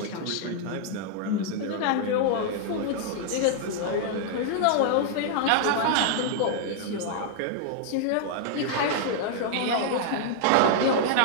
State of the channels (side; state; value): both; different; correlation -0.01